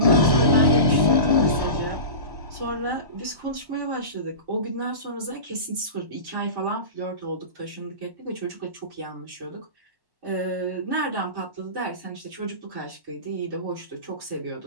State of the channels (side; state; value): left; late; 1.1 ms